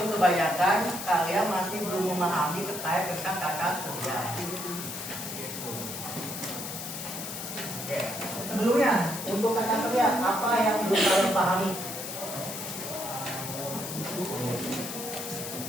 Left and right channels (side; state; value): left; noise; hiss, 7 dB below the sound